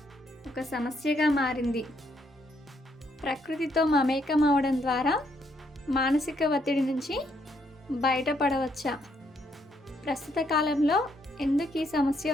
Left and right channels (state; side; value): normal; both; correlation 0.73